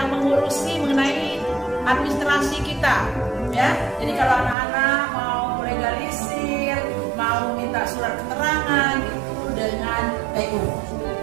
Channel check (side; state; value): left; drops out; at 4.5 s